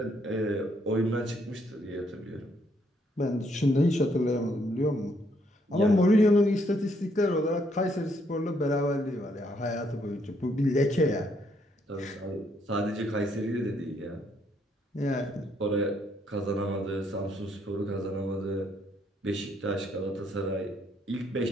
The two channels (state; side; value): normal; both; correlation 0.71